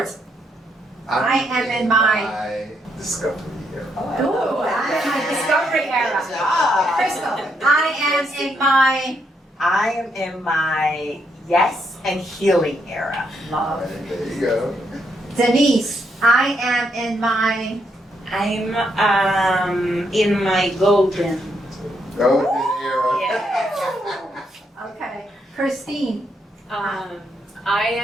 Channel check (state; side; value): normal; both; correlation 0.77